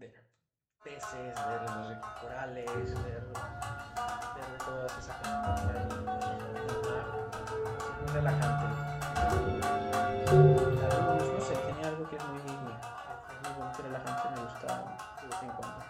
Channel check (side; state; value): both; identical; correlation 1.00